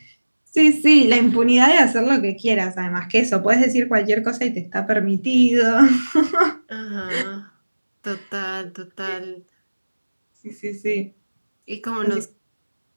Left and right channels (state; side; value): inverted; both; correlation -1.00